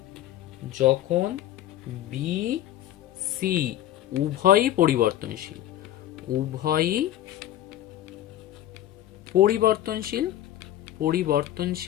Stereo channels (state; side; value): quieter; right; 12.9 dB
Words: যখন বি সি উভয়ই পরিবর্তনশীল, উভয়ই পরিবর্তনশীল,